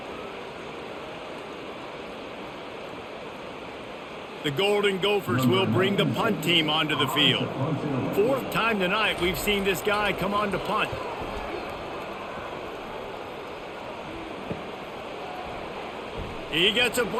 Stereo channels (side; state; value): both; identical; correlation 1.00